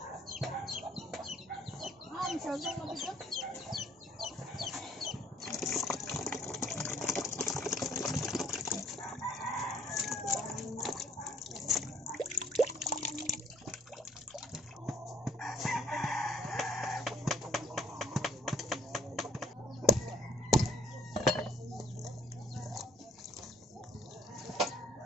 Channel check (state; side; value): normal; both; correlation 0.59